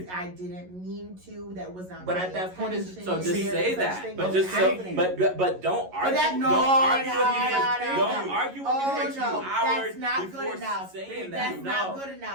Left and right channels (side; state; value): left; late; 11 ms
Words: it? I didn't mean to. That was not. But my at that point, it's- intention. So just See, say Such that. thing But as just so, happening. but don't argue. that- no, don't argue no, with me. no, Don't no. argue with Oh, me for 2 no, hours that's not before good enough. saying That's that. not No. good